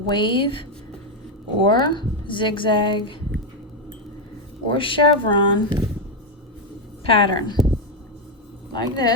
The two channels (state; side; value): normal; both; correlation 0.05